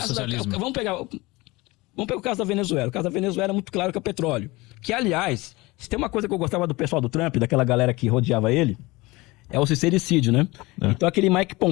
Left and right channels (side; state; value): right; quieter; 22.2 dB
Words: socialismo? Vamos pegar o caso da Venezuela. O caso da Venezuela é muito claro que é petróleo. Que, aliás, se tem uma coisa que eu gostava do pessoal do Trump, daquela galera que rodeava ele, é o sincericídio, né? Então aquele Mike